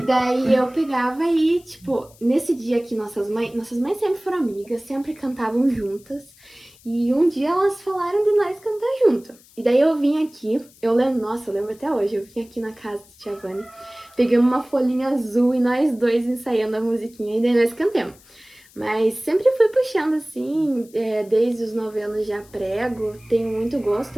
eu pegava e, tipo, nesse dia que nossas mães sempre foram amigas, sempre cantavam juntas. E um dia elas falaram de nós cantar junto. E daí eu vim aqui, eu lembro até hoje, eu vim aqui na casa de Tia Vânia, pegamos uma folhinha azul e nós dois ensaiando a musiquinha e daí nós cantamos. Mas sempre fui puxando assim, desde os 9 anos já prego, tenho muito gosto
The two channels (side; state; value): left; noise; hiss, 27 dB below the sound